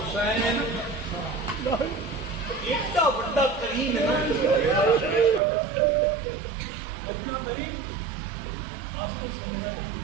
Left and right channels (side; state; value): left; drops out; at 5.4 s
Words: इतना बड़ा करीम है ना, इतना करीम वास्तव समझा।